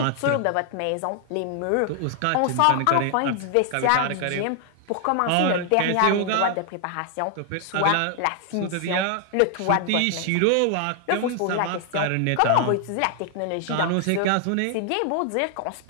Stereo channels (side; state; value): both; different; correlation 0.00